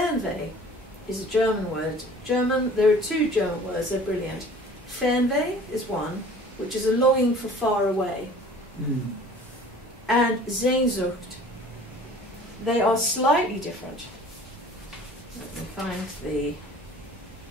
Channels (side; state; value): both; normal; correlation 0.47